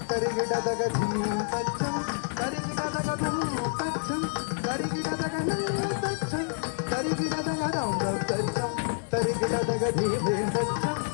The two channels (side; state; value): right; silent; digital silence